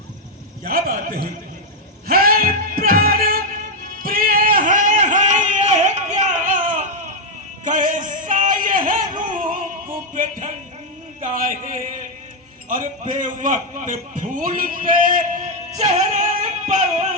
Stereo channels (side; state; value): both; normal; correlation 0.00